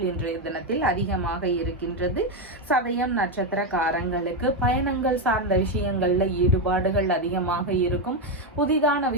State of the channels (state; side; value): normal; both; correlation 0.07